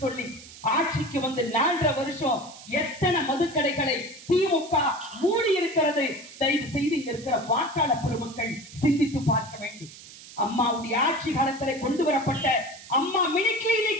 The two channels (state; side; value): noise; right; hiss, 18 dB below the sound